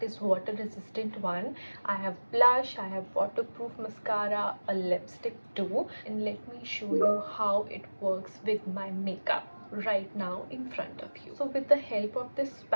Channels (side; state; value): both; inverted; correlation -1.00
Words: is water resistant one. I have blush, I have waterproof mascara, a lipstick too, and let me show you how it works with my makeup right now in front of you. So with the help of this